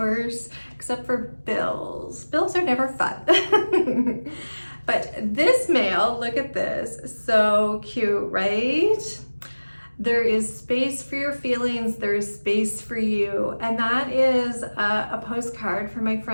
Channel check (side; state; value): both; inverted; correlation -1.00